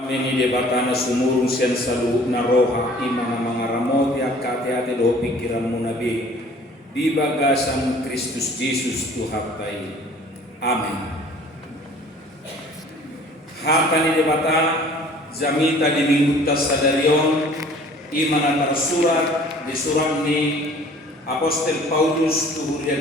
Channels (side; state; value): both; normal; correlation 0.51